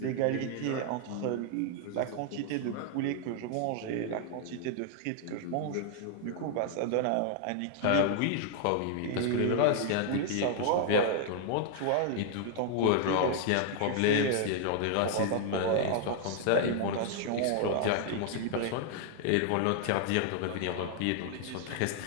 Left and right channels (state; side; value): different; both; correlation 0.00